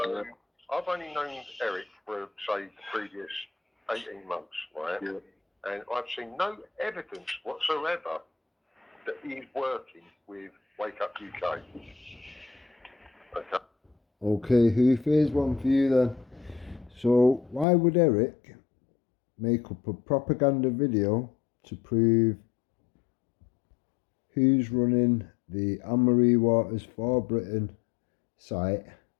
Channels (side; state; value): right; drops out; at 17.7 s